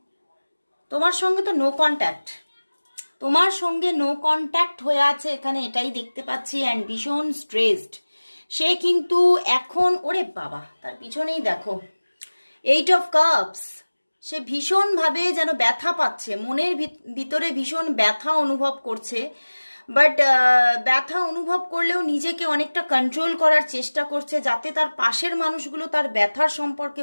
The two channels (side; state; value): both; inverted; correlation -1.00